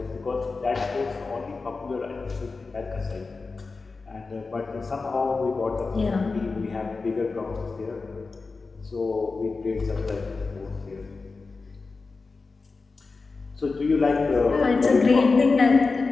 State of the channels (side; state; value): right; quieter; 4.1 dB